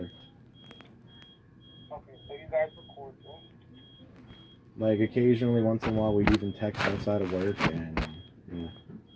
Okay, so you guys were cordial. Like, occasionally, once in a while, we'd even text outside of work, and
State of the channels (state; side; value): identical; both; correlation 1.00